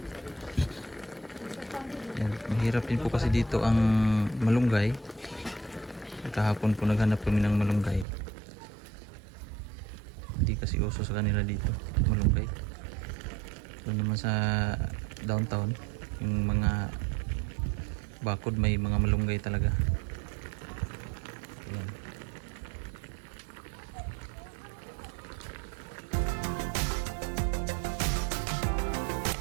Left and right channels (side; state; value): left; drops out; at 8.1 s